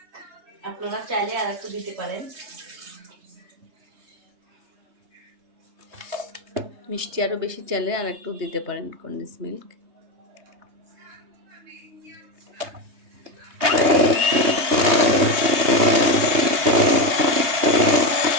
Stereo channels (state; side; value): late; left; 3.3 ms